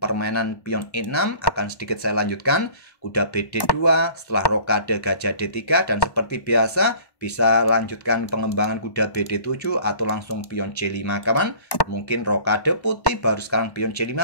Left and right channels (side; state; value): right; late; 1.1 ms